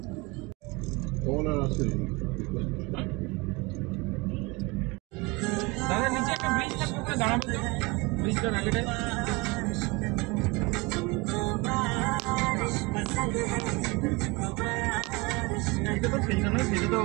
কমলা রাস্তা দাঁড়াবে তো ব্রিজটার আগেটায়। এটা তো সেইটা নয়, সেটা তো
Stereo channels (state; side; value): quieter; left; 25.7 dB